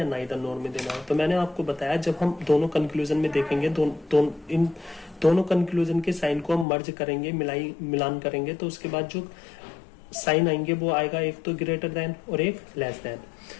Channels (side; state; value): right; drops out; at 6.7 s